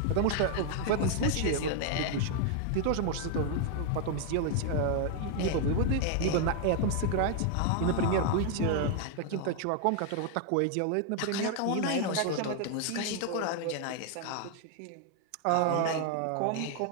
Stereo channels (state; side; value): different; both; correlation 0.00